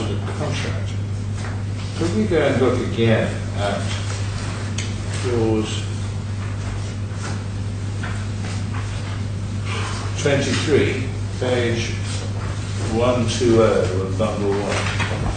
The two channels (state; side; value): identical; both; correlation 1.00